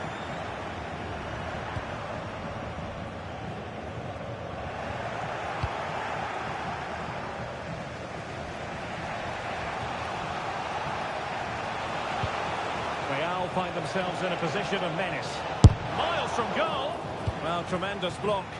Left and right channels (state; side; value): identical; both; correlation 1.00